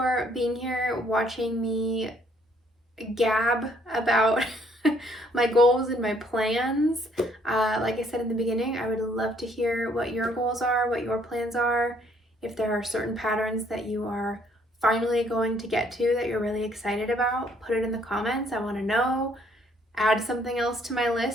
being here, watching me gab about my goals and my plans. Like I said in the beginning, I would love to hear what your goals are, what your plans are. If there are certain patterns that you are finally going to get to that you're really excited about, put it in the comments. I want to know. Add something else to my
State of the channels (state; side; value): normal; both; correlation 0.65